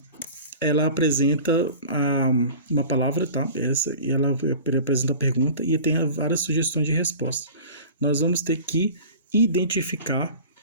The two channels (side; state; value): both; inverted; correlation -0.40